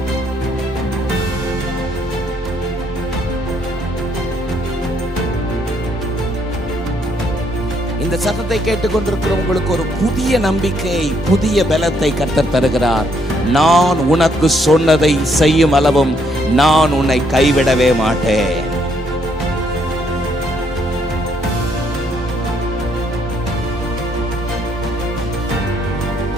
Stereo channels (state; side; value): normal; both; correlation 0.71